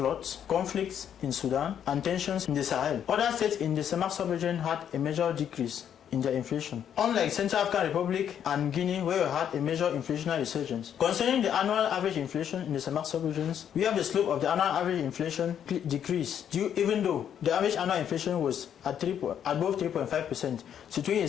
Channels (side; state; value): right; quieter; 9.1 dB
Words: conflicts in Sudan, and tensions in the Sahel. Other states in the CEMAC sub-region had a major decrease in their inflation, unlike Central African Republic and Guinea, where we had a major inflationary resurgence. Concerning the annual average inflation in the CEMAC sub-regions, we have the slope of the annual average inflation decrease, even though the average annual inflation was at above 3.5%, situating